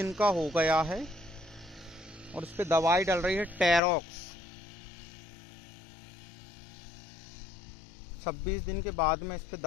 का हो गया है और इस पे दवाई डल रही है टेरॉक्स। 26 दिन के बाद में इस पे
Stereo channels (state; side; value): drops out; right; at 3.8 s